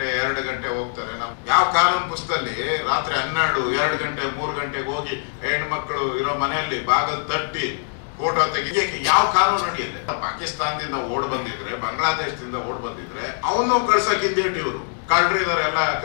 2 ಗಂಟೆ ಹೋಗ್ತಾರೆ. ನಾವು ಯಾವ ಕಾನೂನು ಪುಸ್ತಕದಲ್ಲಿ ರಾತ್ರಿ 12 2 ಗಂಟೆ 3 ಗಂಟೆಗೆ ಹೋಗಿ ಹೆಣ್ಮಕ್ಳು ಇರೋ ಮನೆಯಲ್ಲಿ ಬಾಗಿಲು ತಟ್ಟಿ ಫೋಟೋ ತೆಗಿಯಕ್ಕೆ ಯಾವ ಕಾನೂನು ನಡೆಯುತ್ತೆ? ಪಾಕಿಸ್ತಾನದಿಂದ ಓಡ್ ಬಂದಿದ್ರೆ, ಬಾಂಗ್ಲಾದೇಶದಿಂದ ಓಡ್ ಬಂದಿದ್ರೆ ಅವನು ಕಳ್ಸಕ್ಕಿಂದೇಟ್ ಇವರು ಕಳ್ರಿ ಇದಾರೆ ಎಲ್ಲ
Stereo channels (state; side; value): silent; right; 62 dB below the other